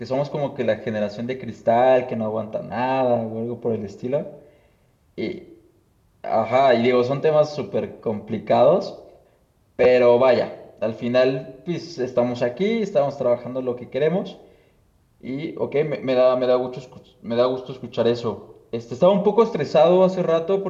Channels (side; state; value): both; identical; correlation 1.00